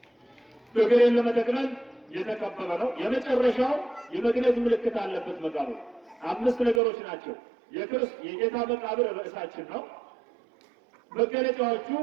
እግሬን ለመጠቅለል የተከበበ ነው። የመጨረሻው የመግነዝ ምልክት አለበት መቃብሩ። 5 ነገሮች ናቸው። የጌታ መቃብር ርዕሳችን ነው። መገለጫዎቹ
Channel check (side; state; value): left; drops out; at 6.8 s